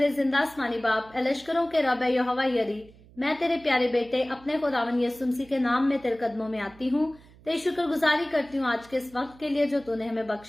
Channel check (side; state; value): right; noise; hum, 24 dB below the sound